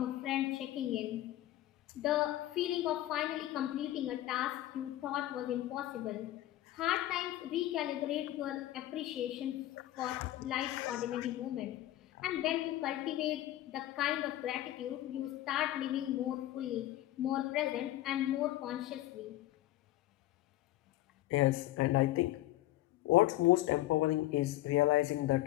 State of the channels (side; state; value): right; quieter; 14.9 dB